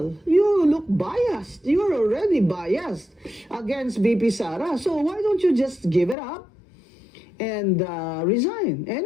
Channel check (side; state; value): right; drops out; at 6.2 s